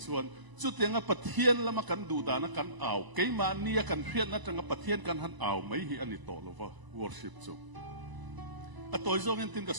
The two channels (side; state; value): left; late; 1.0 ms